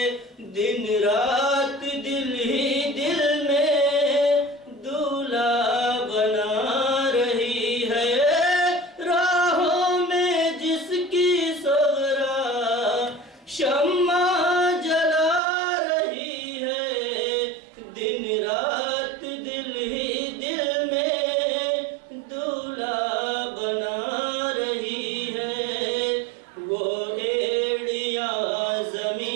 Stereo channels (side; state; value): left; drops out; at 15.4 s